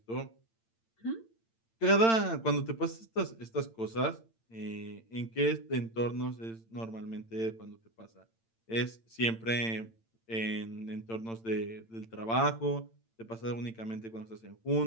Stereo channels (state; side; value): late; right; 8.9 ms